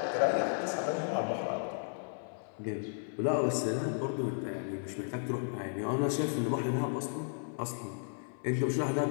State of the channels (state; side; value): silent; right; 55 dB below the other